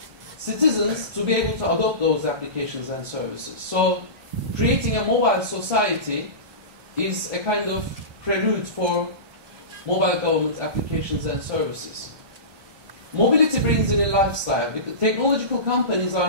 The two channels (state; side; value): late; left; 1.2 ms